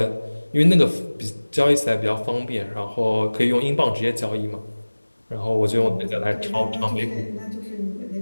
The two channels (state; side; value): inverted; both; correlation -1.00